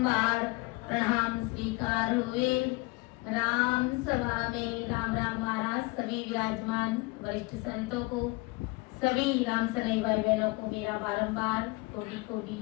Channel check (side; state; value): right; quieter; 24.5 dB